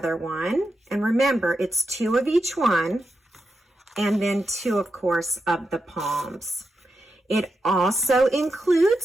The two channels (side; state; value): both; normal; correlation 0.87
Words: one. And remember, it's 2 of each one, and then 2, of course, of the palms. It also